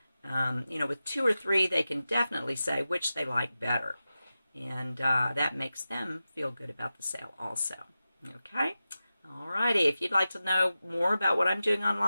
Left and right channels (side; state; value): both; inverted; correlation -0.93